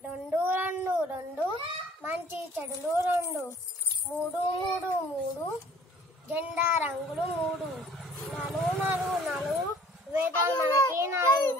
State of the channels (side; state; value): both; normal; correlation 0.53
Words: రెండు రెండు రెండు మంచి చెడులు రెండు, మూడు మూడు మూడు జెండా రంగులు మూడు, నలుగు నలుగు నలుగు వేదాలు మనకి